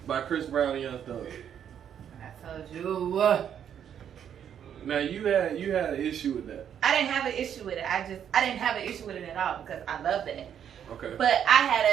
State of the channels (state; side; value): quieter; left; 9.0 dB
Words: by Chris Brown and Young Thug. I told you. Now you had an issue with that. I didn't have an issue with it. I didn't have an issue with it at all because I love that. Okay. But I